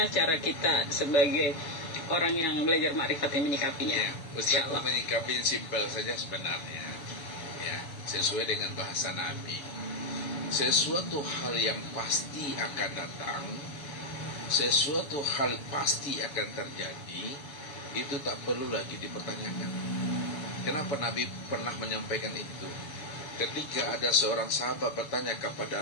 cara kita sebagai orang yang belajar makrifat ini menyikapinya? Ya, Ustadz menyikapi simpel saja sebenarnya, ya, sesuai dengan bahasa Nabi. Sesuatu hal yang pasti akan datang, sesuatu hal pasti akan terjadi, itu tak perlu lagi dipertanyakan. Kenapa Nabi pernah menyampaikan itu? Ketika ada seorang sahabat bertanya kepada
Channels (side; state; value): right; late; 7.0 ms